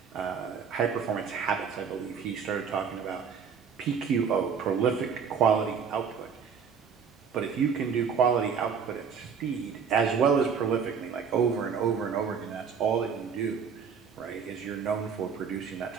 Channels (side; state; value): left; quieter; 6.5 dB